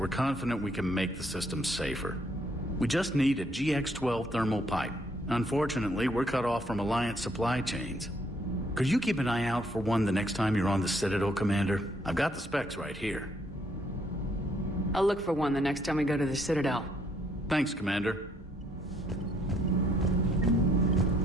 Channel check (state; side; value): normal; both; correlation 0.68